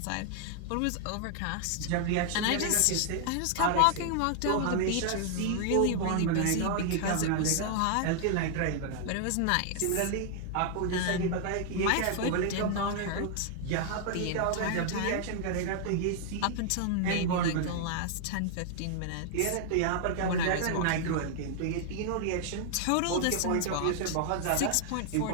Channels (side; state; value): both; different; correlation 0.00